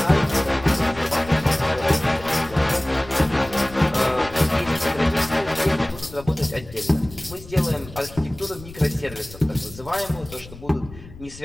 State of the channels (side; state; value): left; noise; rumble, 17 dB below the sound